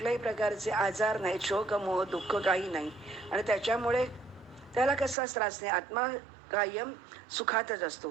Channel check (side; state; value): left; drops out; at 5.2 s